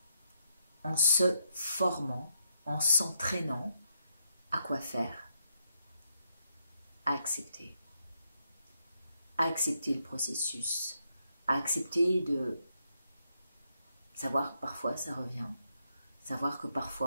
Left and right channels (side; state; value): both; inverted; correlation -0.78